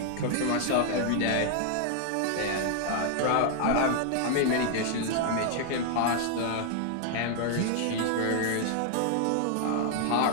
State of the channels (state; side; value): different; both; correlation 0.00